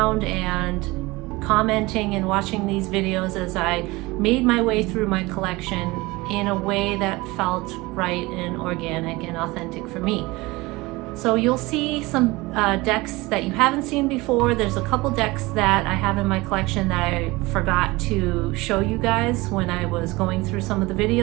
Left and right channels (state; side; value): quieter; left; 22.0 dB